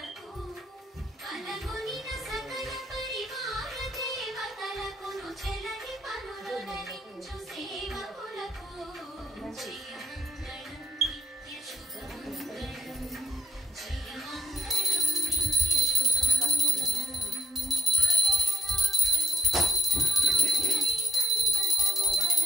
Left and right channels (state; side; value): normal; both; correlation 0.67